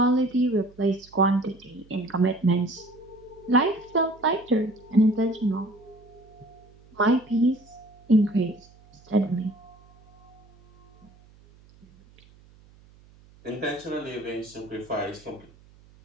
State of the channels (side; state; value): right; noise; hum, 26 dB below the sound